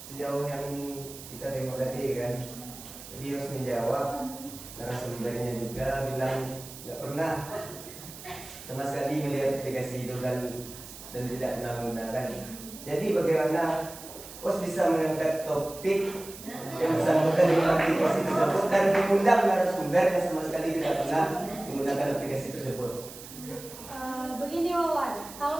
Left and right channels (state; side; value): noise; right; hiss, 15 dB below the sound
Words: sejauh yang kita tengok tadi kan, jadi harus menjawab. Narasumbernya juga bilang nggak pernah sama sekali melihat aplikasi itu kan, dan tidak pernah menggunakan. Jadi bagaimana Pos bisa mengangkat topik yang bersangkutan dengan aplikasi tersebut dan mengundang narasumber yang sama sekali tidak pernah menggunakan aplikasi tersebut? Begini Wawan,